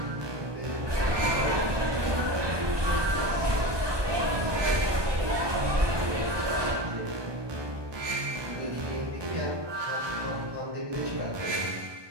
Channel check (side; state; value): left; late; 1.2 ms